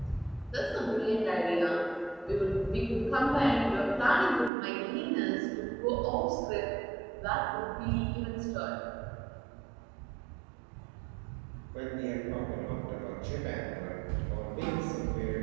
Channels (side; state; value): left; drops out; at 4.5 s